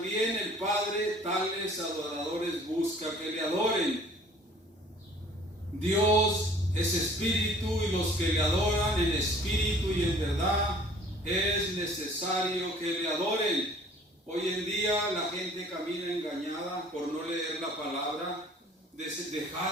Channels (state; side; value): normal; both; correlation 0.53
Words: el Padre tales adoradores busca que le adoren. Dios es espíritu y los que le adoran en espíritu y en verdad es necesario que le adoren. Hoy en día la gente camina engañada por no leer la palabra,